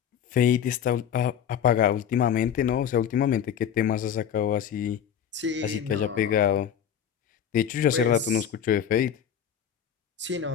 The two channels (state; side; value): quieter; right; 8.8 dB